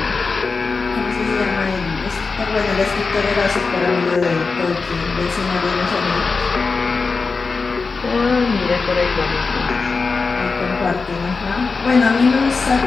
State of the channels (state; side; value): quieter; right; 4.4 dB